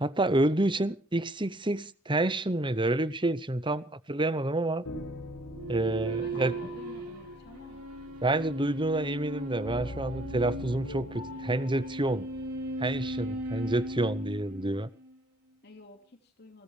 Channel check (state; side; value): normal; both; correlation 0.61